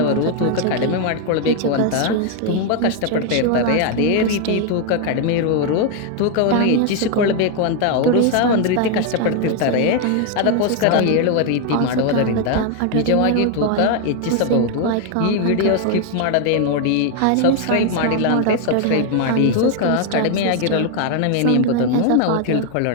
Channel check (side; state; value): both; different; correlation 0.01